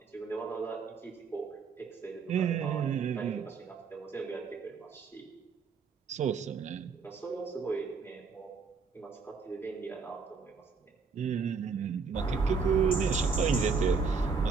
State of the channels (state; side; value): quieter; left; 5.2 dB